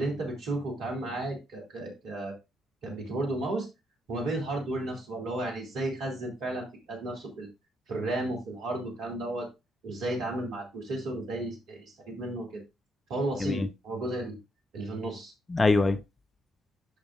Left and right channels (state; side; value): normal; both; correlation 0.77